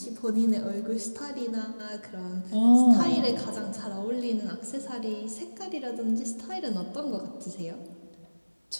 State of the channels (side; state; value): both; inverted; correlation -1.00